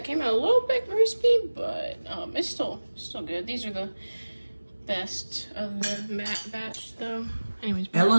came out a little bit crispy, but it's still good. These are the best of the batch, though. Anyways,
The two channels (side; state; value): both; inverted; correlation -1.00